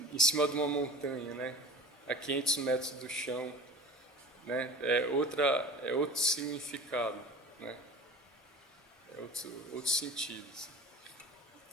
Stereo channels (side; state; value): both; normal; correlation 0.38